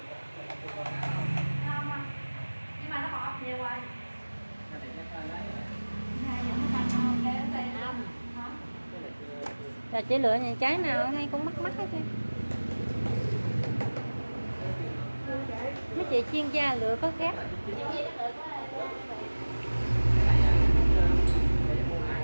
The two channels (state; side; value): inverted; both; correlation -1.00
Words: chưa có không? Ngon không? Nhưng mà nó bọt nhiều rồi. Cái này chắc là lấy. Hai giờ nó thành không? Để nó tê Không. hả? Cái này chưa. Là chỉ lựa những trái nào hay cũng mắc mắc hết trơn. Mấy chị chuyên gia lựa có khác. Chị nó được quá.